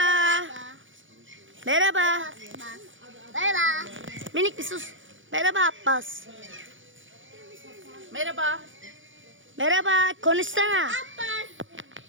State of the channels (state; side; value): late; left; 0.56 ms